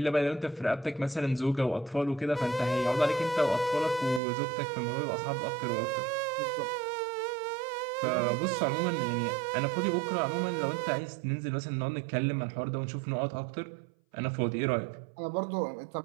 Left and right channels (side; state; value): left; drops out; at 4.2 s